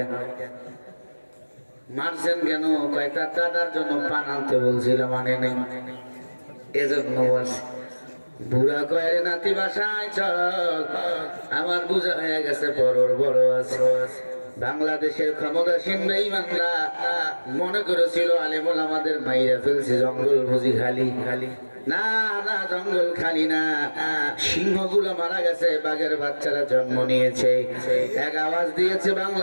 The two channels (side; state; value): both; inverted; correlation -1.00